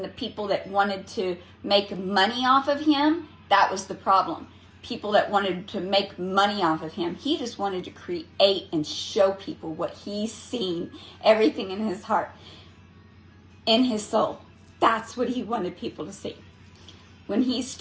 the people that wanted to make money off of him, that was the problem. People that wanted to make money off of him. He just wanted to create and show people what he's seen, everything in his heart, in his soul. That's what he wanted people to see. When he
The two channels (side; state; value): both; identical; correlation 1.00